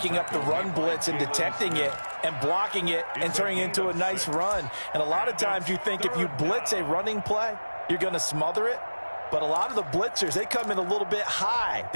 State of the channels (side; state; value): both; inverted; correlation -1.00